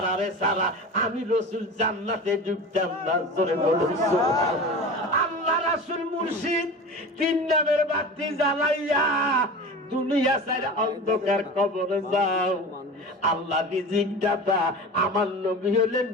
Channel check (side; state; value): both; normal; correlation 0.32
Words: সারা আমি রসুল জান্নাতে ঢুকতাম না। জোরে বলুন সুবহানাল্লাহ। আল্লাহ রাসূল মুর্শিদ তিন নামের বাতি জ্বালাইয়া দুনিয়া সাইরা অন্ধকার কবরে যাও। আল্লাহ রিজিক দাতা, আমার নবী হলেন